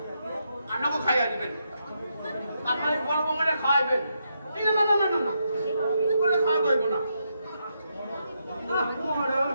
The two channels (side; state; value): both; inverted; correlation -0.81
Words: আমাকে খাইয়া দিবেন। আপনার বড় বৌমারে খাওয়াইবেন। না না না না না না, করে খাওয়া যাইব না।